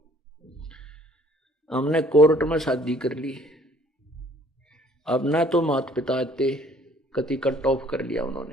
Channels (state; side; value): normal; both; correlation 0.58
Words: हमने कोर्ट में शादी कर ली। अब ना तो माता पिता थे, कति कट ऑफ कर लिया